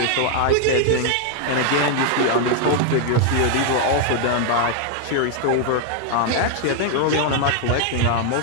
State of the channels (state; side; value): different; both; correlation 0.00